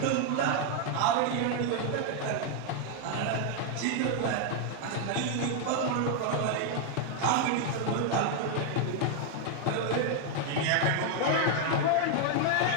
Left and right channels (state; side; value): different; both; correlation 0.00